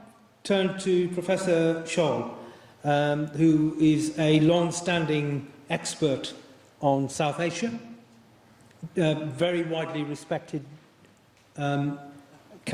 turn to Professor Scholl, who is a long-standing expert on South Asia, very widely respected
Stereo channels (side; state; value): both; identical; correlation 1.00